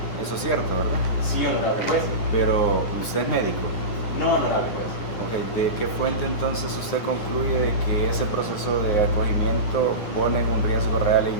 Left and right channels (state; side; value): late; right; 9.7 ms